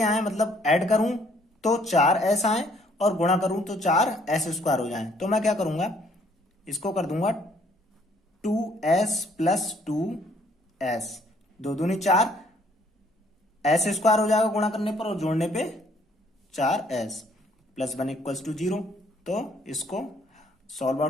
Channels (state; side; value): normal; both; correlation 0.63